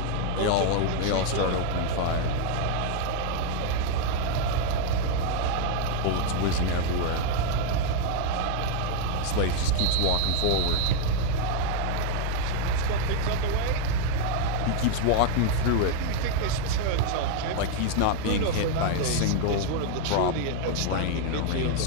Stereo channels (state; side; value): different; both; correlation 0.00